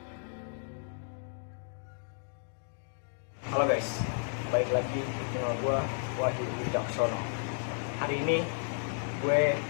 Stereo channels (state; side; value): silent; right; digital silence